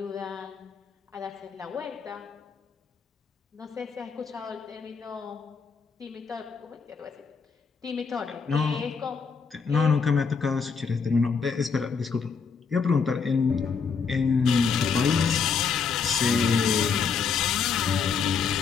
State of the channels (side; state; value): right; quieter; 5.7 dB